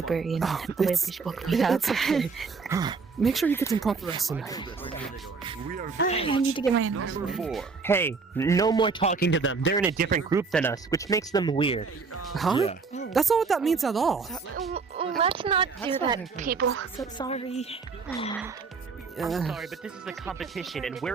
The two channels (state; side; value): quieter; left; 4.8 dB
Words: and the library woke me up. It's okay. Make sure you get some proper rest tonight. I need to get my hands. Hey, no more talking to them. They're in a different group than us, which makes them weird. Huh? That's not what that means at all. Let's not do that, people. So sorry. I'm sorry, but this is a competition, and